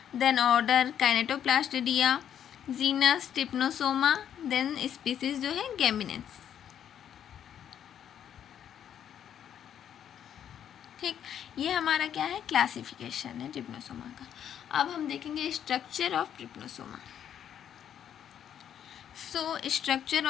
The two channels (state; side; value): quieter; right; 9.5 dB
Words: then order kinetoplastida, genus trypanosoma, then species जो है गेमिनेंस। ठीक, ये हमारा क्या है, क्लासिफिकेशन है ट्रिप्नोसोमा का। अब हम देखेंगे structure of trypanosoma. Structure